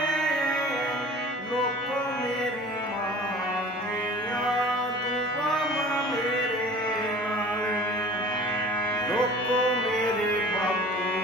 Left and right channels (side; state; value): both; normal; correlation 0.44